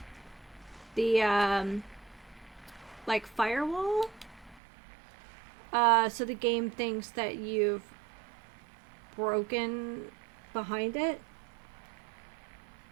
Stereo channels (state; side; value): drops out; left; at 4.6 s